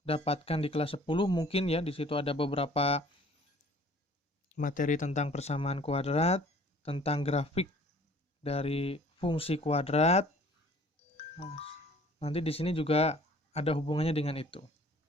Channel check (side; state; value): both; normal; correlation 0.53